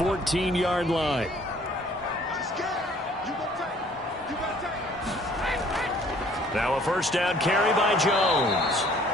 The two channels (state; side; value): normal; both; correlation 0.57